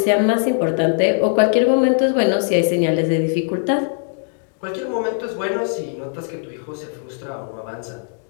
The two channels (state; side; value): silent; right; digital silence